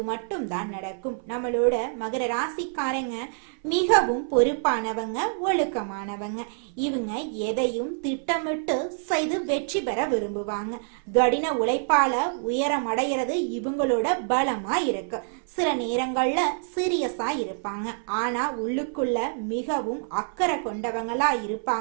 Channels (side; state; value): left; silent; 57 dB below the other